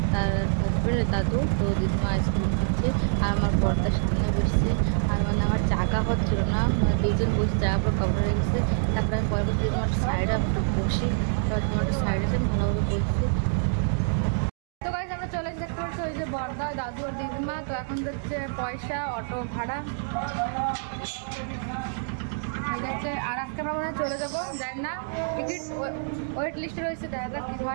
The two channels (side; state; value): left; silent; digital silence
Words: তার হাজব্যান্ড দাদু। তো দিদিমা আইসক্রিম খাচ্ছে, আর আমার বর্দার সামনে বসছে। আর মানে আমার জায়গা হচ্ছিল না, মানে দুজন বসে জায়গা পুরো কভার হয়ে গেছে। তারপরে আমি পরে করছি দিদিমা একটা সাইডে একটু বসি, তারপর দিদিমা একটা সাইডে এসে আমি ভালোভাবে বসছি। তো গাইজ আমরা চলে এসে দেখতে পাচ্ছি ওই যে বর্দা, দাদু আর দিদিমা। তো এখন যাচ্ছে পয়সা, অটো ভাড়া। আর আজকে আমরা মনে হয় চলে যাবো, জানি না, টিকিট ওয়েট লিস্টে রয়েছে, দেখা যাক কি